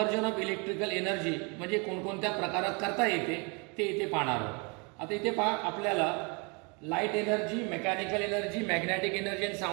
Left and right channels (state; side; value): quieter; left; 32.2 dB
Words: ऑफ इलेक्ट्रिकल एनर्जी म्हणजे कोणकोणत्या प्रकारात करता येते ते इथे पाहणार आहोत। आता इथे पहा आपल्याला light energy, mechanical energy, magnetic energy आणि